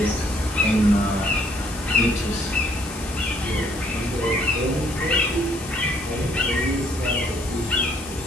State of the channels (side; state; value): left; noise; hiss, 14 dB below the sound